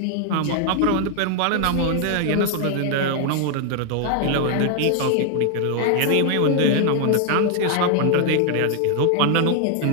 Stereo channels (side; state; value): both; different; correlation 0.00